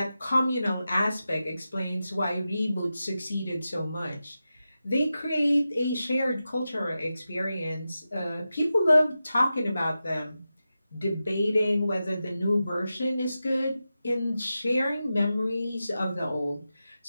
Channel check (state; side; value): inverted; both; correlation -0.92